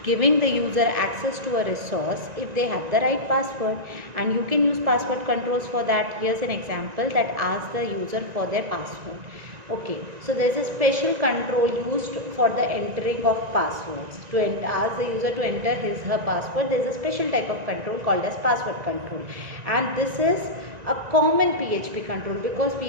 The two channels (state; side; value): late; left; 1.9 ms